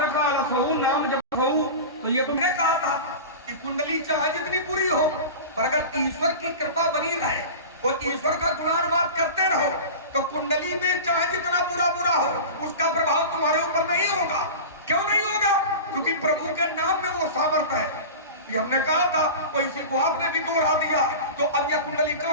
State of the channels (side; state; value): both; inverted; correlation -0.31